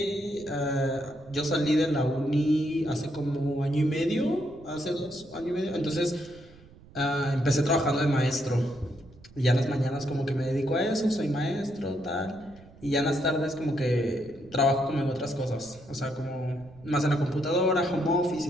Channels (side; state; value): right; noise; rumble, 23 dB below the sound